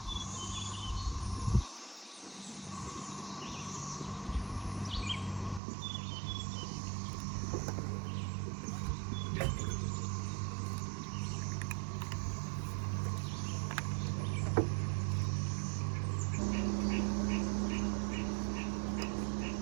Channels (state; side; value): drops out; left; at 5.6 s